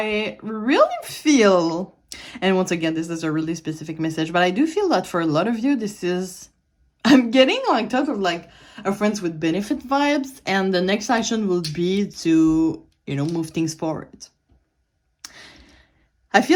really feel, and once again, this is a really specific message, but I do feel that for a lot of you, I'm getting like type of like a friends with benefit vibes, and the next action will be to, move things forward. I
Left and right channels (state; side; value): identical; both; correlation 1.00